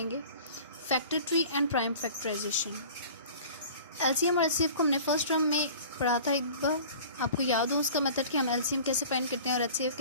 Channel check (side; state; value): both; inverted; correlation -0.43